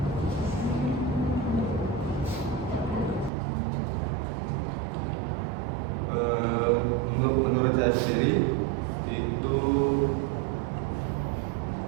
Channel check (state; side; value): drops out; left; at 3.3 s